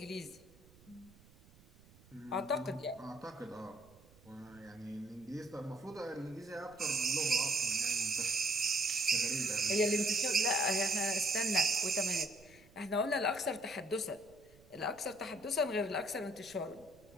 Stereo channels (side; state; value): right; noise; rumble, 26 dB below the sound